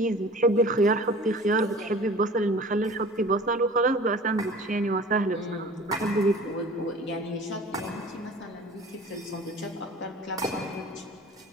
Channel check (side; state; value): both; normal; correlation 0.43